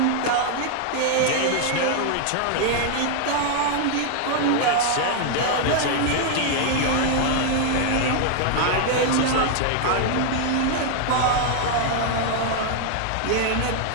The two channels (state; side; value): different; both; correlation 0.00